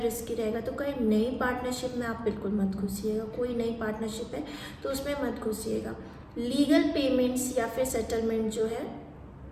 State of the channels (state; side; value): identical; both; correlation 1.00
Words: रिस्की रहेगा, तो कहीं नई पार्टनरशिप में आप बिल्कुल मत घुसिएगा। कोई नई पार्टनरशिप है तो उसमें मत घुसिएगा। लीगल पेमेंट्स या फिर सेटलमेंट जो है